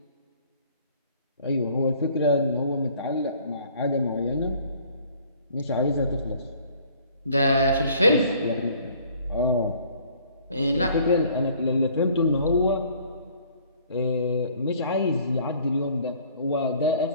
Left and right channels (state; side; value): inverted; both; correlation -0.56